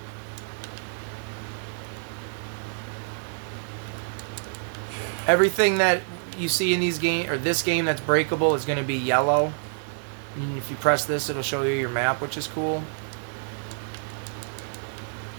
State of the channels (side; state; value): left; silent; digital silence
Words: Everything that you see in this game that's breakable is going to be yellow. And if you press this, it'll show you your map, which is cool.